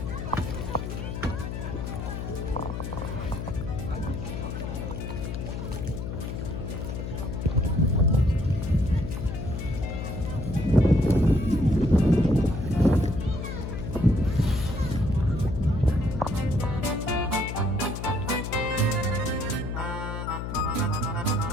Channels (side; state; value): left; noise; hum, 5 dB below the sound